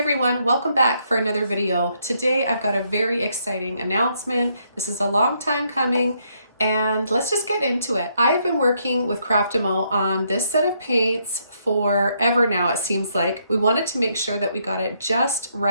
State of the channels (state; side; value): inverted; both; correlation -0.74